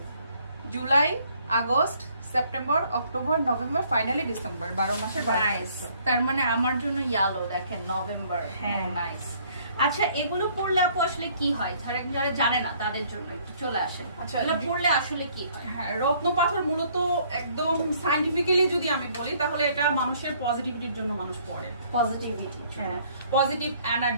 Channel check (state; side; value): inverted; both; correlation -0.62